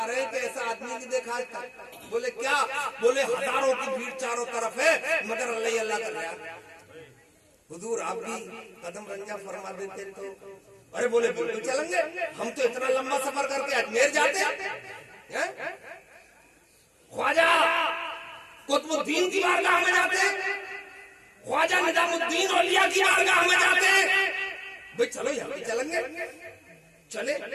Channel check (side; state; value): both; identical; correlation 1.00